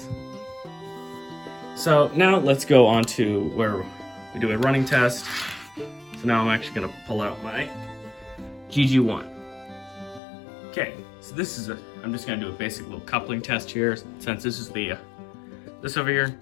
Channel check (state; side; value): drops out; right; at 10.2 s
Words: So now let's go on to where we do a running test. So now I'm actually gonna pull out my GG1. Okay, so I'm just gonna do a basic little coupling test here, since this is this over here,